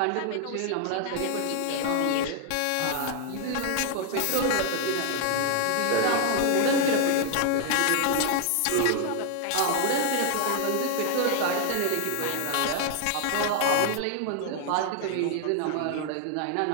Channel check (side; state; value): both; different; correlation 0.00